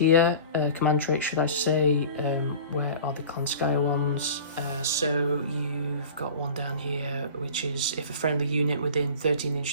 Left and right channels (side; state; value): both; inverted; correlation -0.39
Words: Command traits, should I say. Where are the Klanskaya ones? So you've got one down here, which is if a friendly unit within 13